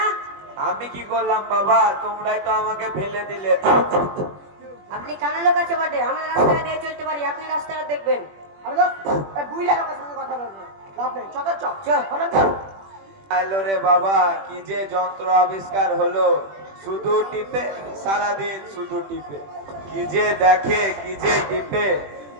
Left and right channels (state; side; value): late; left; 21 ms